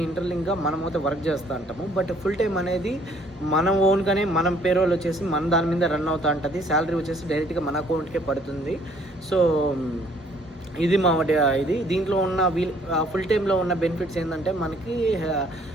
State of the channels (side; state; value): both; normal; correlation 0.61